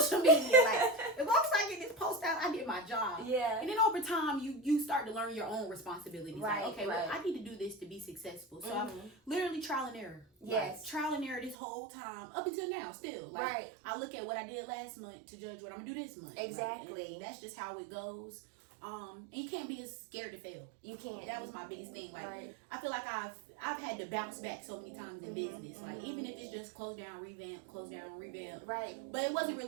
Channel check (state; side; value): drops out; left; at 11.6 s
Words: media. Like, as long as I get this post out, I did my job. Yeah. And then over time, you start to learn your own responsibilities. Right. Like, okay, well, I need to do this to be successful. So I'm literally trial and error. Yes. Like, trial and error this whole time, up until now, still. Like, I look at what I did last month to judge what I'm gonna do this month. Exactly. Like, that's just how it goes. And you can't be as scared to fail. You can't. That was my biggest thing. Like, I feel like I've had to bounce back so many times in business. Like, even if it's just close down, revamp, close down, revamp. Right. But it wasn't